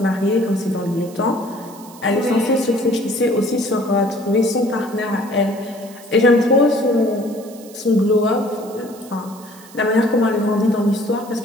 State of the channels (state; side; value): noise; right; hiss, 21 dB below the sound